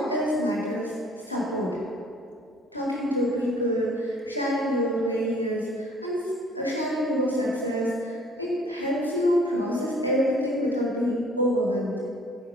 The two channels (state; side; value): normal; both; correlation 0.55